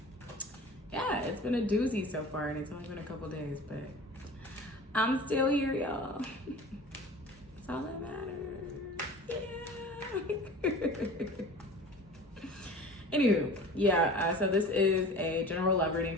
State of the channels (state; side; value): normal; both; correlation 0.39